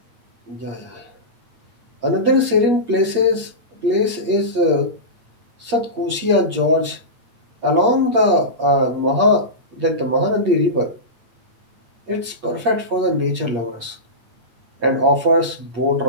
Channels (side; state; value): left; late; 8.6 ms